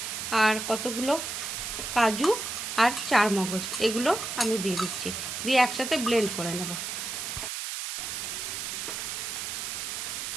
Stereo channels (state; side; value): noise; right; hiss, 4 dB below the sound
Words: আর কতগুলো কাজু আর চারমগজ, এগুলো আমি দিয়ে দিচ্ছি। দিয়ে একসাথে ব্লেন্ড করে নেব।